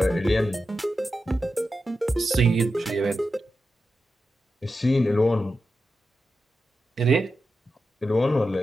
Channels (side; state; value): both; normal; correlation 0.90